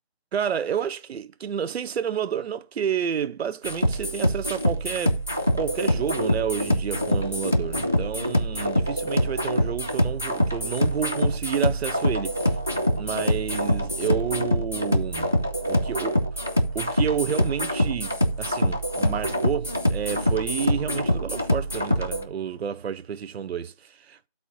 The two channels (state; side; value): inverted; both; correlation -0.59